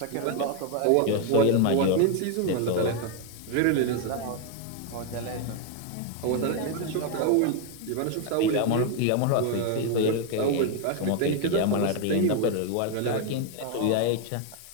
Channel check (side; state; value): both; different; correlation 0.01